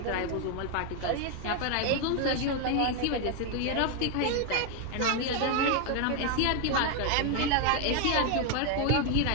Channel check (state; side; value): different; both; correlation 0.01